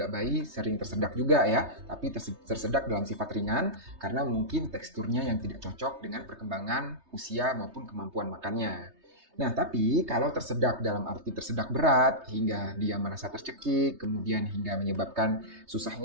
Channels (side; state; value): left; late; 3.2 ms